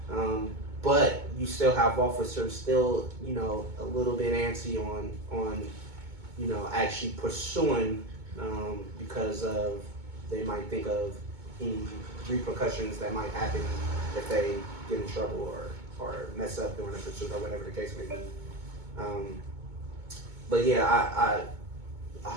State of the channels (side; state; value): left; late; 2.2 ms